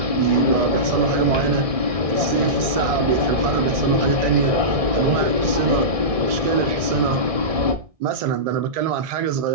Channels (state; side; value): late; left; 1.6 ms